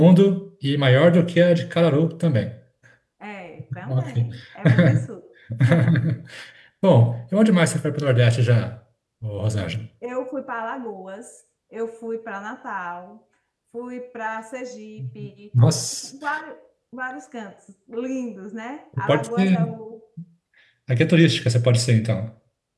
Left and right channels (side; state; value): both; identical; correlation 1.00